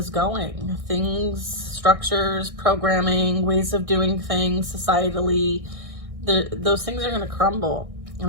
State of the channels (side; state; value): left; late; 1.6 ms